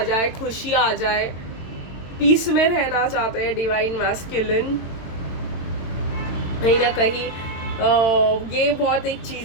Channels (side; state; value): right; late; 22 ms